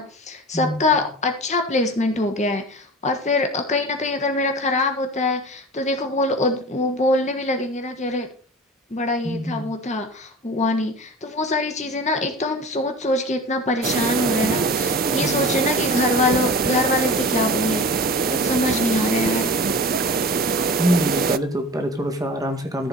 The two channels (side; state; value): both; normal; correlation 0.35